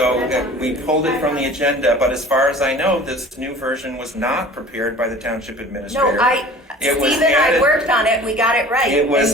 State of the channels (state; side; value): normal; both; correlation 0.43